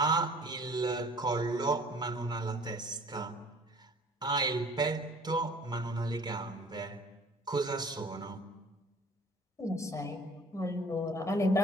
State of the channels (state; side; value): normal; both; correlation 0.51